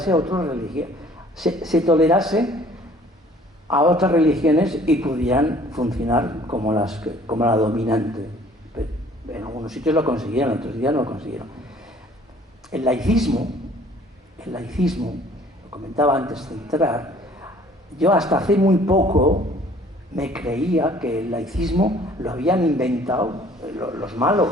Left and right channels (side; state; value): both; normal; correlation 0.55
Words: a otras religiones, se tolerase a otras religiones y pudieran funcionar como la dominante. En algunos sitios lo consiguieron, en otros días no lo consiguieron. El laicismo, lo comentaba antes de entrar, yo hasta hace muy poco me creía que el laicismo lo habían inventado los